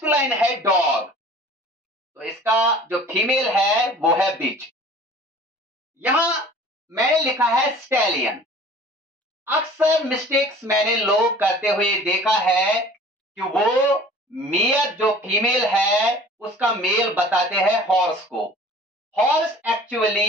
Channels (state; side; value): normal; both; correlation 0.46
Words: है डॉग, तो इसका जो फीमेल है वो है बिच। यहां मैंने लिखा है स्टैलियन। अक्सर मिस्टेक्स मैंने लोग करते हुए देखा है कि वो मेयर जो फीमेल है उसका मेल बताते हैं हॉर्स को। हॉर्स